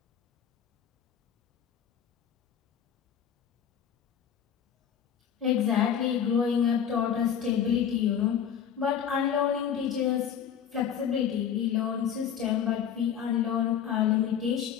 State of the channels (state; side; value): quieter; right; 8.6 dB